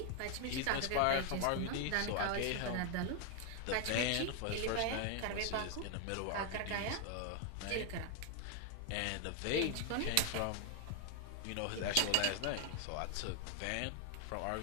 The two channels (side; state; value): both; different; correlation 0.00